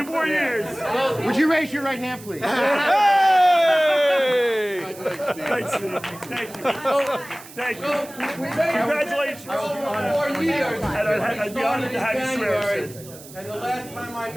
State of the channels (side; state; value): right; noise; hiss, 18 dB below the sound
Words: more years. Would you raise your right hand, please? Hey! Thanks, Steve. Thank you. Thank you. Congratulations. Over 4 years. I'd be honored to have you swear, Sid. And the last time I